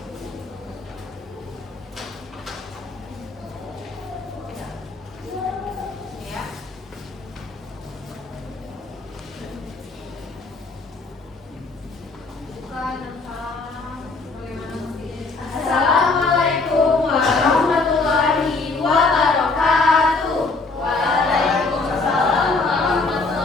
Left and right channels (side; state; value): right; quieter; 3.8 dB